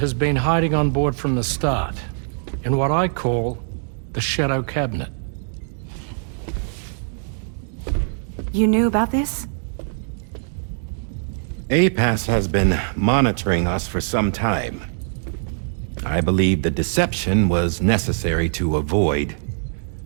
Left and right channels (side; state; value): left; silent; digital silence